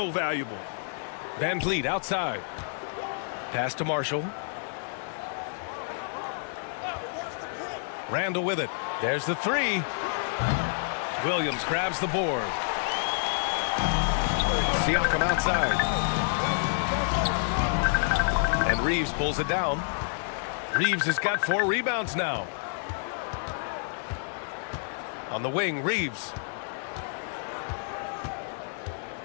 valuable. Van Vliet outside. Pass to Marshall. Randall with it. There's the three. Williams grabs the board. Siakam outside. And Reeves pulls it down. Reeves has got 4 rebounds now. On the wing, Reeves.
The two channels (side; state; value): right; silent; digital silence